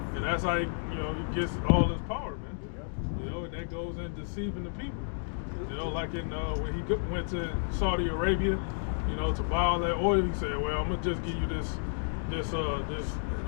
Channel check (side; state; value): right; silent; digital silence